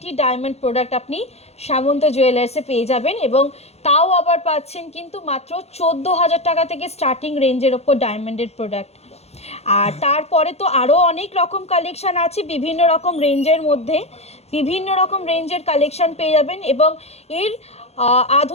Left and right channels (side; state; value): right; late; 0.31 ms